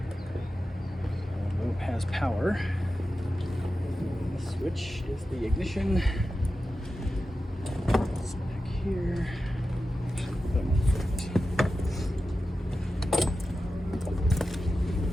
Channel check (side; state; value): both; normal; correlation 0.92